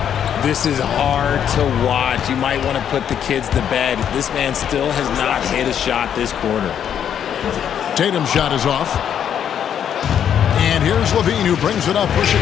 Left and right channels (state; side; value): quieter; right; 9.0 dB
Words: This is hard to watch. You might want to put the kids to bed. This man still has not hit a shot this quarter. Tatum's shot is off. And here's LaVine who brings it up for